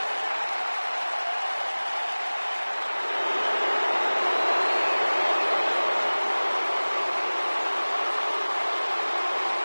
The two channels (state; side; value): inverted; both; correlation -1.00